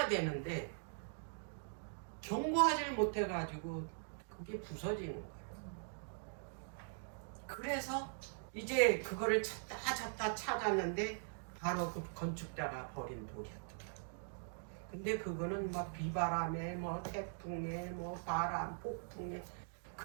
되는데 견고하지를 못해가지고 그게 부서지는 거예요. 그래서 이제 그거를 찾다 찾았는데 바로 그 건축자가 버린 돌이었다. 근데 그거는 뭐 비바람에 뭐 태풍에 뭐 바람 폭풍에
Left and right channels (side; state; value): left; silent; digital silence